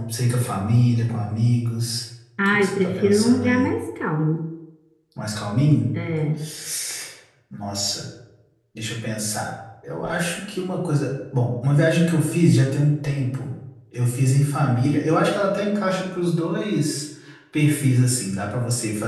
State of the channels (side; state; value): both; identical; correlation 1.00